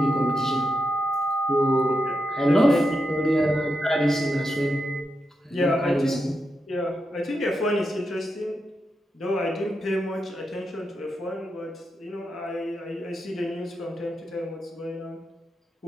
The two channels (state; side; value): normal; both; correlation 0.86